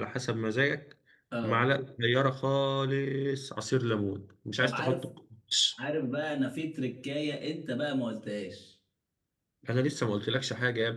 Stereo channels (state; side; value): identical; both; correlation 1.00